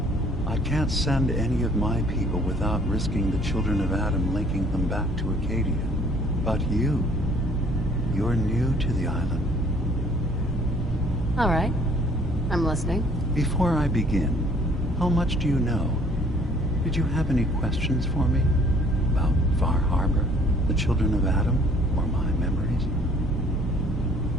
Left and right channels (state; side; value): noise; right; hum, 8 dB below the sound